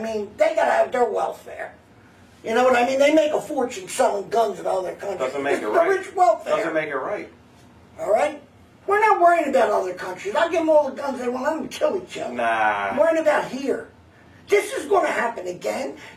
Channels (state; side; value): identical; both; correlation 1.00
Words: They gotta have their welfare. You know what I mean? They make a fortune selling guns to other countries. Doesn't make it's it right. The rich welfare. Doesn't make it right. All right? We're not worrying about other countries. I'll give them all the guns they want. Let them kill each other. Nah. I'm worrying about here. This is going to happen again.